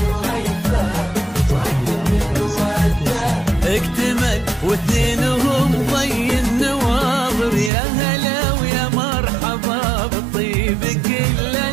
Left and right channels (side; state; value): left; drops out; at 7.7 s